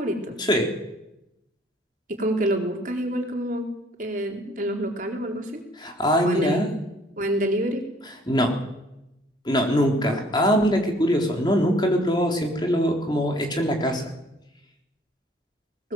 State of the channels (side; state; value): both; normal; correlation 0.58